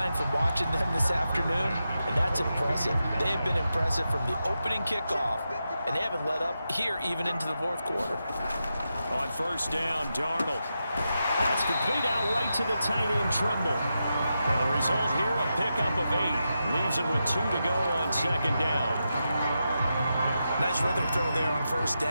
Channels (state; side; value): inverted; both; correlation -0.88